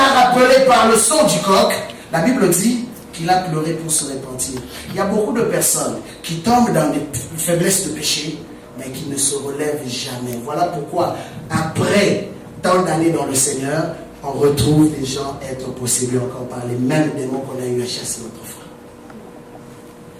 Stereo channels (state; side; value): identical; both; correlation 1.00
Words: rappelé par le son du coq, la Bible dit qu'il a pleuré pour se repentir. Il y a beaucoup de personnes qui tombent dans des faiblesses de péché, mais qui ne se relèvent jamais. Voilà pourquoi, après tant d'années dans le Seigneur, on retrouve des gens être possédés encore par les mêmes démons qu'on a eu à chasser autrefois.